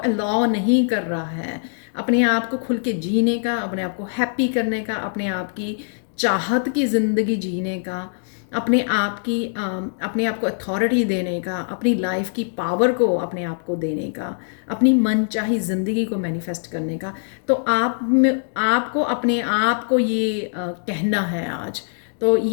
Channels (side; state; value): right; silent; digital silence